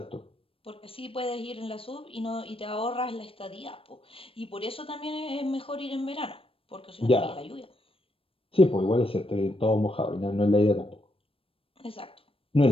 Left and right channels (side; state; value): right; late; 0.27 ms